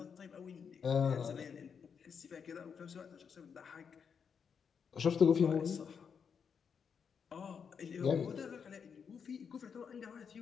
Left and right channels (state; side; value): quieter; right; 6.6 dB